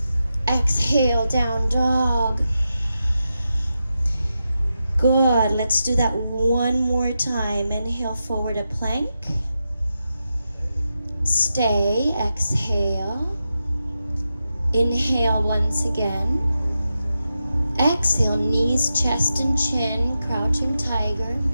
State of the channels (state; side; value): inverted; both; correlation -0.89